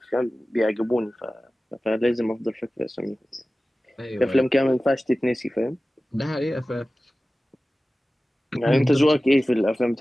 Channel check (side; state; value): both; normal; correlation 0.96